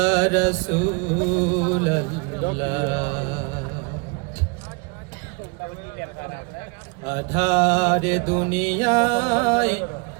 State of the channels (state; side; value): quieter; left; 32.0 dB